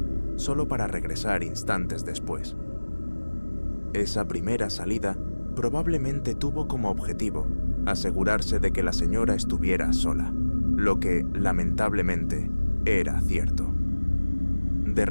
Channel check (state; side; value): inverted; both; correlation -1.00